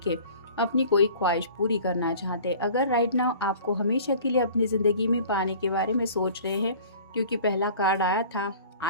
अपनी कोई ख्वाहिश पूरी करना चाहते। अगर राइट नाउ आपको हमेशा के लिए अपनी ज़िंदगी में पाने के बारे में सोच रहे हैं, क्योंकि पहला कार्ड आया था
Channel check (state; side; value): inverted; both; correlation -0.46